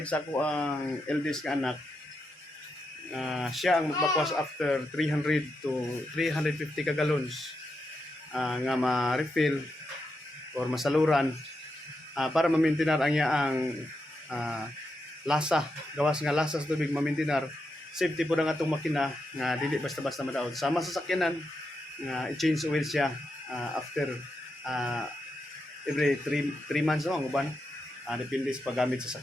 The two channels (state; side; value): normal; both; correlation 0.85